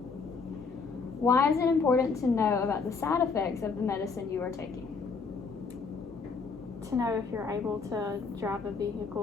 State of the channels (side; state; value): right; quieter; 4.9 dB